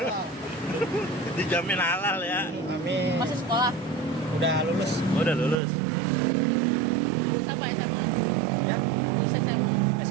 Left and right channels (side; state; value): left; drops out; at 5.6 s